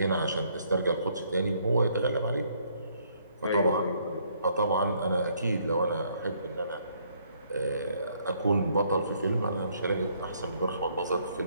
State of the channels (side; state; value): both; inverted; correlation -0.68